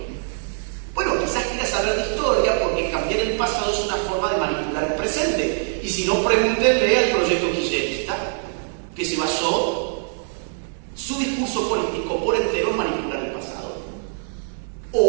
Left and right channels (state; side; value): silent; left; 59 dB below the other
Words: Bueno, quizás quieras saber de historia porque cambiar el pasado es una forma de manipular el presente. Y si no, pregúntenle al proyecto kirchnerista, que se basó su discurso político por entero en manipular el pasado.